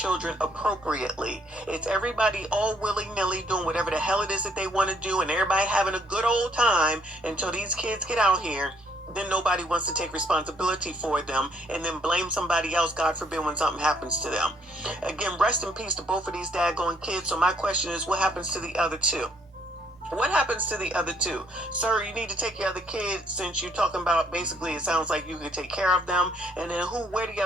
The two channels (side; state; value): both; normal; correlation 0.67